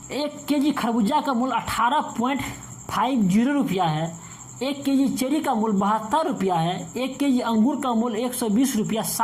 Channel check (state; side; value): identical; both; correlation 1.00